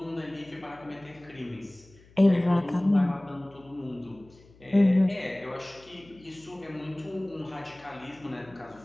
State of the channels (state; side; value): noise; left; hum, 26 dB below the sound